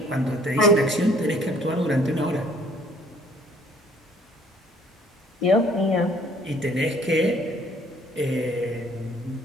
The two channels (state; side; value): normal; both; correlation 0.59